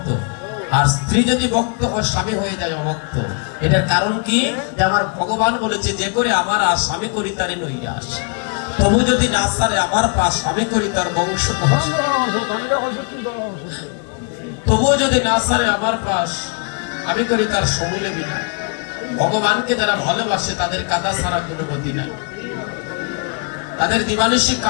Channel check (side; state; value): right; quieter; 37.8 dB